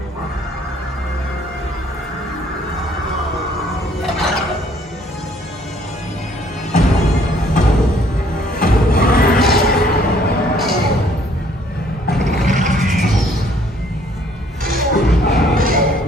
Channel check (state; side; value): normal; both; correlation 0.62